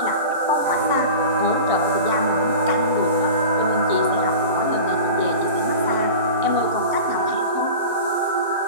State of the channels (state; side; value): inverted; both; correlation -0.34